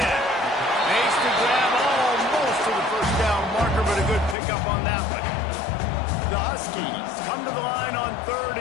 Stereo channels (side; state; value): right; drops out; at 4.4 s